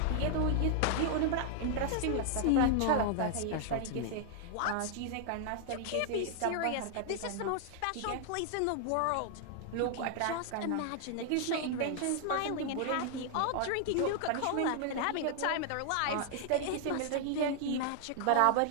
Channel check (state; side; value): different; both; correlation 0.00